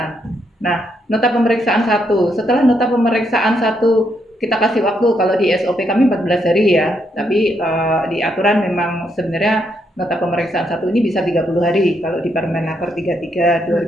Nah, nota pemeriksaan 1. Setelah nota pemeriksaan 1 kita kasih waktu, kalau di SOP kami 14 hari ya. Tapi di aturan memang sebenarnya nota pemeriksaan 1 ini bisa 30 hari kalau di Permenaker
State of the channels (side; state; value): both; normal; correlation 0.77